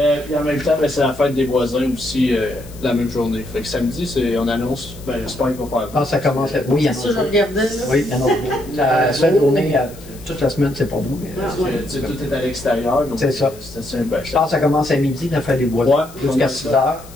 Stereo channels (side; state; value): left; noise; hiss, 21 dB below the sound